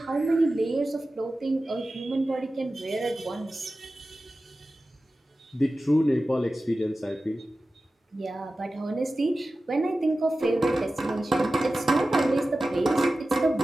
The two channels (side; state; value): both; normal; correlation 0.95